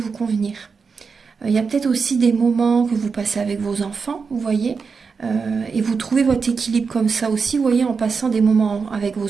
convenir ? Il y a peut-être aussi des moments que vous passez avec vos enfants, vous voyez, et vous trouvez votre équilibre comme ça aussi, vous voyez, en passant des moments avec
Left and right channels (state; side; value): quieter; left; 5.2 dB